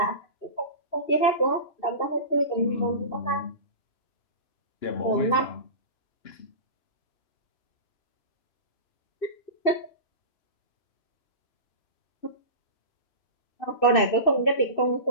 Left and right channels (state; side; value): late; right; 2.6 ms